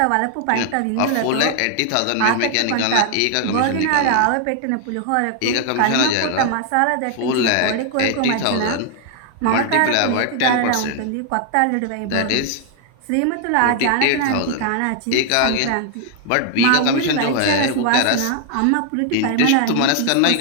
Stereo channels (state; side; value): different; both; correlation 0.00